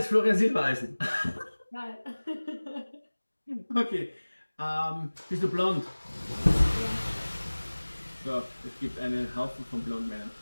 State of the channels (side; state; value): both; inverted; correlation -1.00